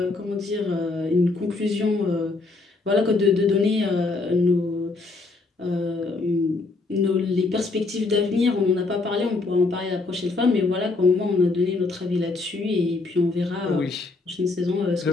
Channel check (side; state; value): right; quieter; 3.6 dB